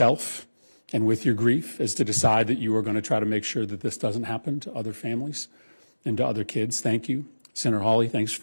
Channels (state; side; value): inverted; both; correlation -1.00